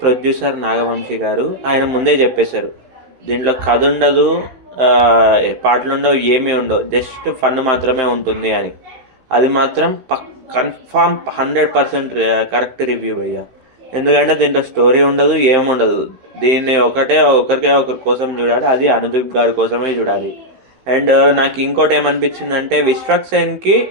ప్రొడ్యూసర్ నాగవంశీ గారు. ఆయన ముందే చెప్పేశారు దీంట్లో కథ ఉండదు, పాటలు ఉండవు, ఏమీ ఉండవు, జస్ట్ ఫన్ మాత్రమే ఉంటుంది అని. అది మాత్రం కన్ఫామ్ 100% కరెక్ట్ రివ్యూ అయ్యా. ఎందుకంటే దీంట్లో స్టోరీ ఉండదు, ఏముండదు. దీన్ని ఒకరికే ఒకరి కోసం చూడాలి, అది అనుదీప్ గారి కోసమే చూడాలి. అండ్ నాకు ఇంకోటి ఏమనిపించిందంటే విశ్వక్ సేన్కి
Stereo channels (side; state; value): left; late; 15 ms